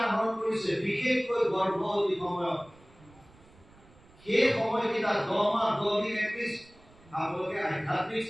আহৰণ কৰিছে, বিশেষকৈ গৰ্ভৱতী সময়ত সেই সময়কেইটা 10 মাহ 10 দিন এটলিষ্ট আপোনালোকে আধ্যাত্মিক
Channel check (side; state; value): right; noise; rumble, 26 dB below the sound